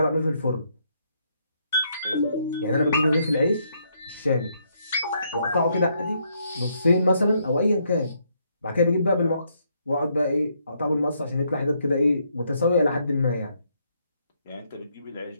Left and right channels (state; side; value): inverted; both; correlation -0.74